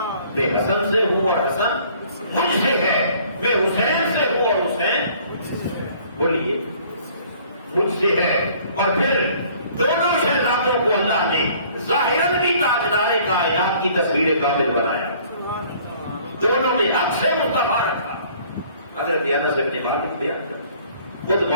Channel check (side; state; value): both; inverted; correlation -0.56